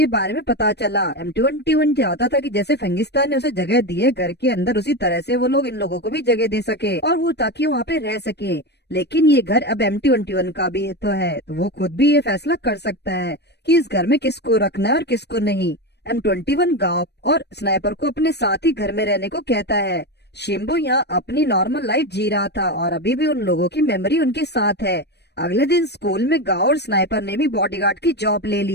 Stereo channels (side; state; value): right; late; 0.49 ms